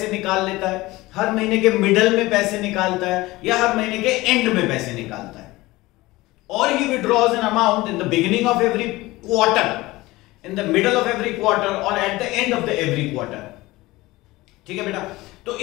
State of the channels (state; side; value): quieter; right; 19.6 dB